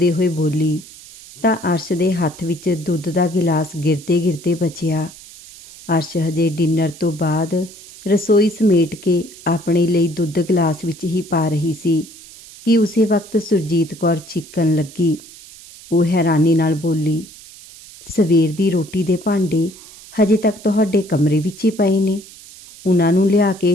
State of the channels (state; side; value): noise; right; hiss, 19 dB below the sound